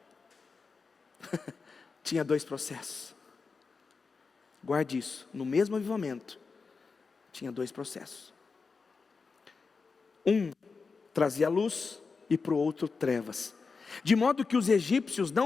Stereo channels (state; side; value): quieter; right; 4.7 dB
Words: tinha dois processos. Guarde isso, no mesmo avivamento, tinha dois processos. Um trazia luz e para o outro trevas. De modo que os egípcios